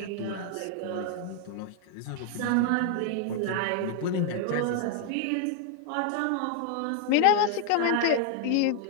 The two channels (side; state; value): both; different; correlation 0.00